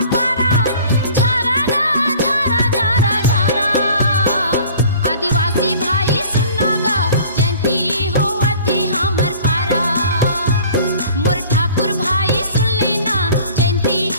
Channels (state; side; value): inverted; both; correlation -0.48